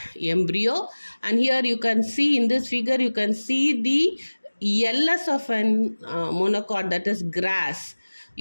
embryo. And here you can see in this figure, you can see the LS of an monocot, that is grass.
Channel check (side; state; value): both; inverted; correlation -1.00